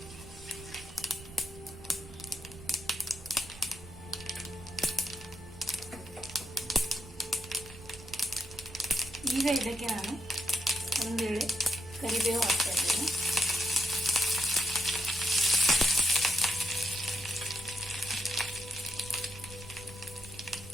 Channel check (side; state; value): right; noise; rumble, 17 dB below the sound